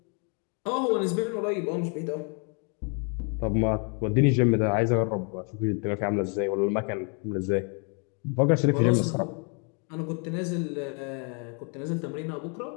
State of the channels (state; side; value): quieter; right; 37.5 dB